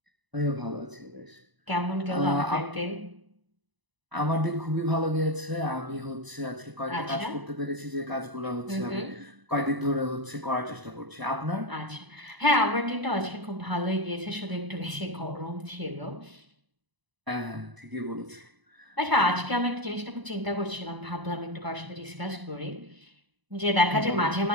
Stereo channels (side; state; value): left; late; 1.0 ms